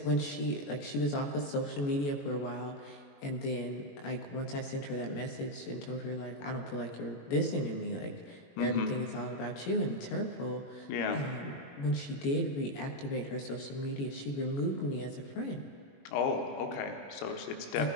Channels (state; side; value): late; right; 21 ms